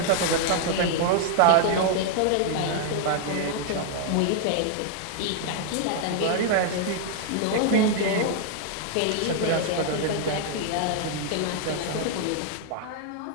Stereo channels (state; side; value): different; both; correlation 0.00